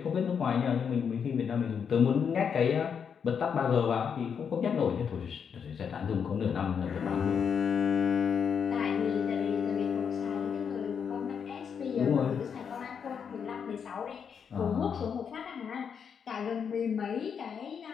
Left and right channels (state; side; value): quieter; right; 7.0 dB